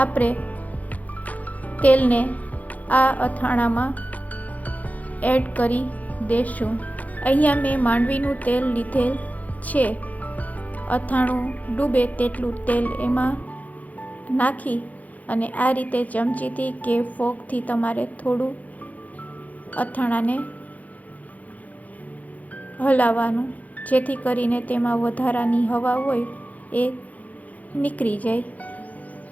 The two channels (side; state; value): right; late; 0.076 ms